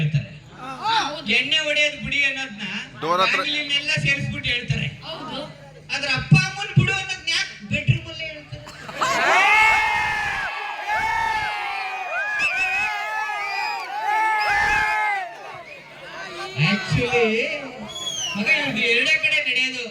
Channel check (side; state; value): both; identical; correlation 1.00